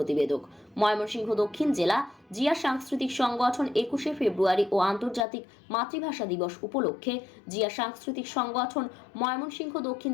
ময়মনসিংহ দক্ষিণ জেলা জিয়া সাংস্কৃতিক সংগঠন 21শে ফেব্রুয়ারি ও আন্তর্জাতিক মাতৃভাষা দিবস উপলক্ষে জিয়া সাংস্কৃতিক সংগঠন ময়মনসিংহ দক্ষিণ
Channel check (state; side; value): drops out; right; at 5.2 s